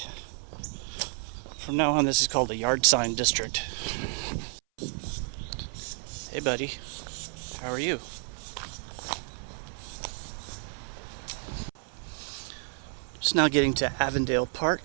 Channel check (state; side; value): silent; left; 57 dB below the other